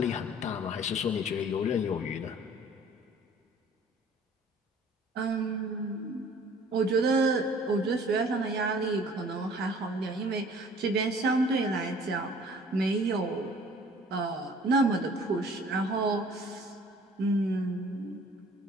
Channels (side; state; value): both; normal; correlation 0.51